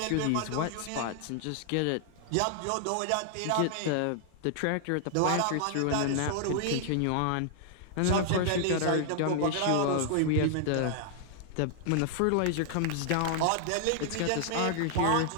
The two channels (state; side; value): different; both; correlation -0.01